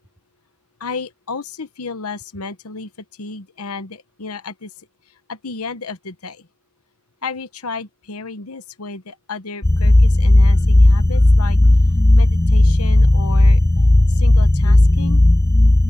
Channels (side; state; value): both; normal; correlation 0.97